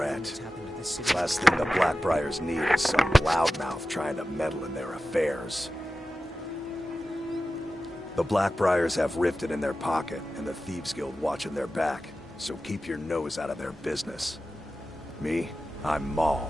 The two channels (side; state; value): both; normal; correlation 0.94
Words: Last thing the Blackbriars need is some loudmouth trying to meddle in their affairs. The Blackbriars have Riften in their pocket, and the Thieves Guild watching their back, so keep your nose out of their business. Me? I'm